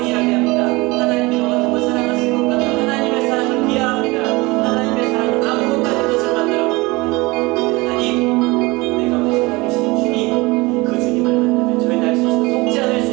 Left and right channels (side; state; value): left; quieter; 23.4 dB